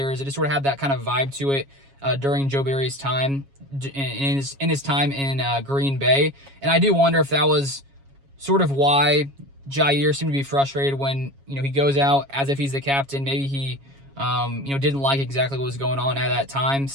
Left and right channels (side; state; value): left; late; 7.3 ms